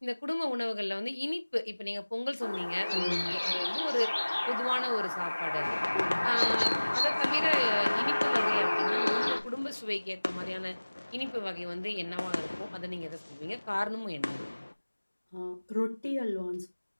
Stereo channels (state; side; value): inverted; both; correlation -1.00